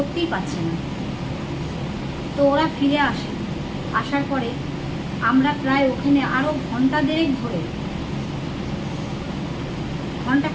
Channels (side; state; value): both; identical; correlation 1.00